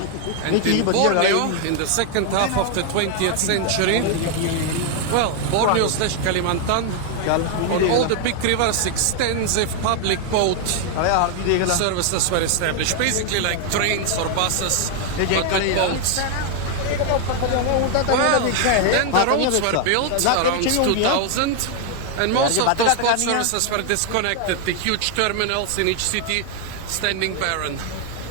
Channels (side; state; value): both; different; correlation 0.00